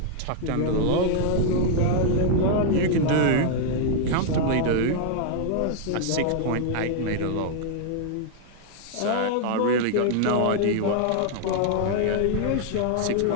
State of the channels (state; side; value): different; both; correlation -0.01